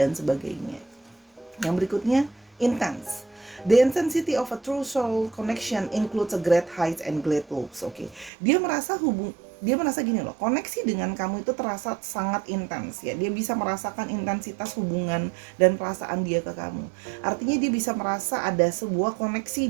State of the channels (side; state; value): left; drops out; at 8.3 s